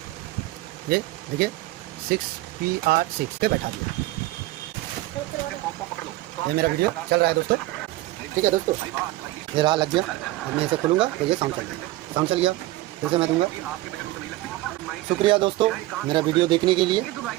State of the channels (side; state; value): left; quieter; 17.8 dB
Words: ये देखिए 6PR6 पे बैठा दिया। ये मेरा वीडियो चल रहा है दोस्तों, ठीक है दोस्तों। ये रहा लग गया, अब मैं इसे खोलूँगा तो ये साउंड चल गया। साउंड चल गया फिर से मैं दूँगा। शुक्रिया दोस्तों मेरा वीडियो देखने के लिए।